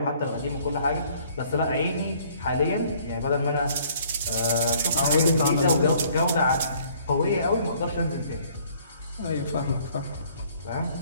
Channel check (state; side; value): inverted; both; correlation -0.59